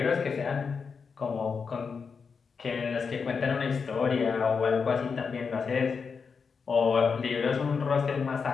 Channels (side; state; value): right; quieter; 5.5 dB